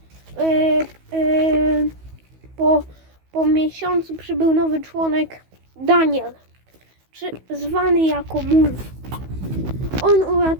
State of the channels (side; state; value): left; late; 16 ms